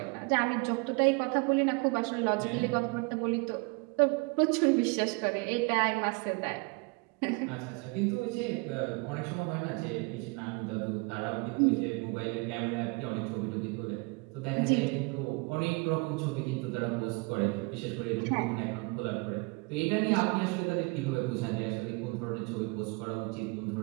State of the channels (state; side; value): quieter; left; 29.5 dB